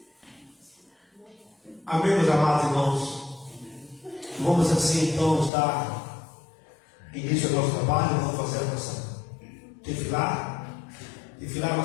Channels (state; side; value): drops out; right; at 5.5 s